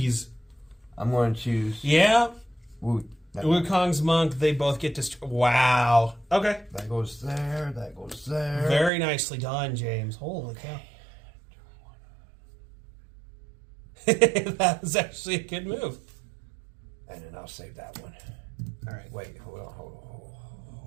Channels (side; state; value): left; drops out; at 8.9 s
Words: I'm going to choose Yeah. that Wukong's monk. They both get destroyed. Wow. Okay. That goes there. That goes there. Very nicely done, James. Holy cow. That was actually a good move. And then I'll save that one. All right. Wait, hold on.